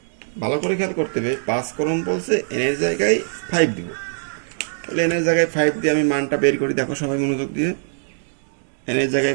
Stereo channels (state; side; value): silent; left; digital silence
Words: ভালো করে খেয়াল করতে হবে, 5 ক্রম বলছে n এর জায়গায় 5 দিব। তাহলে n এর জায়গায় 5 দিয়ে আমি মানটা বের করি। দেখো সবাই মনোযোগ দিয়ে, n এর